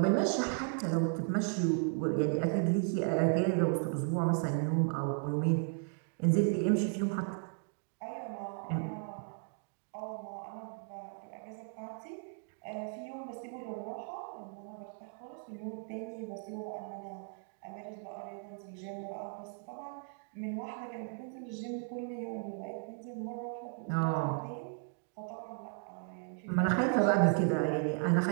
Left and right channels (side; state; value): left; silent; 54 dB below the other